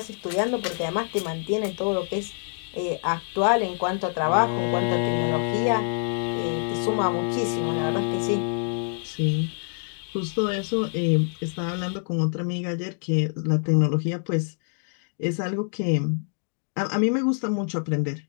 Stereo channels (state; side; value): silent; right; 61 dB below the other